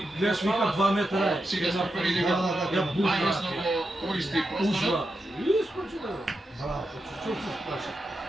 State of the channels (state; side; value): normal; both; correlation 0.87